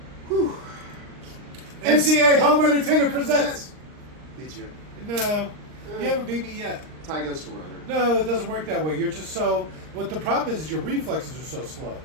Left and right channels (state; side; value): late; left; 39 ms